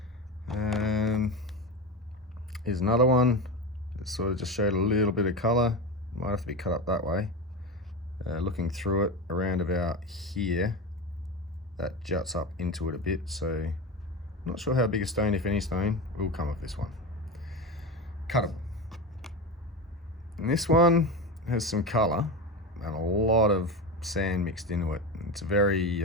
Here's another one that sort of just showed a little bit of colour. Might have to be cut up that way. Looking through it around about here, that juts up into it a bit, so not sure how big a stone, if any stone, will come off this one. Cuttable. And this one has some colour and a lot of sand mixed into it. It's a very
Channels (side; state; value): both; normal; correlation 0.22